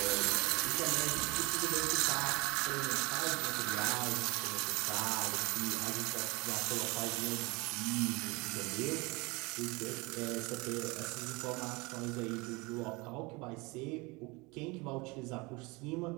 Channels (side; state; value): left; quieter; 25.6 dB